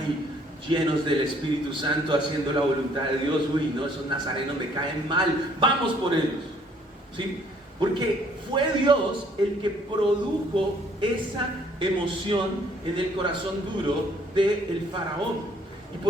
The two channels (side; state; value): both; normal; correlation 0.62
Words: llenos del Espíritu Santo, haciendo la voluntad de Dios. Uy, no, esos nazarenos me caen mal, vamos por ellos, ¿sí? Porque fue Dios el que produjo esa emoción en el corazón duro del faraón. ¿Y